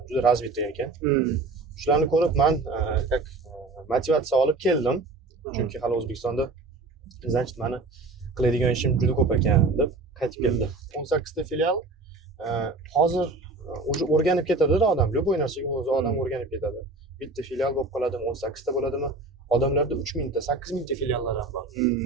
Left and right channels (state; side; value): quieter; left; 3.4 dB